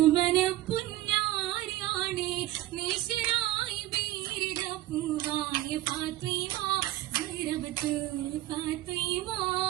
പുന്നാരിയാണ് നേശനായി വീരിട പൂവായ ഫാത്തിമ ഗുരബത്ത് ഫാത്തിമ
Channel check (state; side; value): quieter; left; 15.8 dB